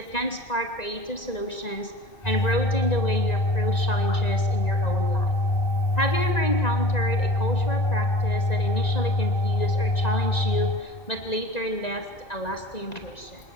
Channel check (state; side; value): late; right; 1.9 ms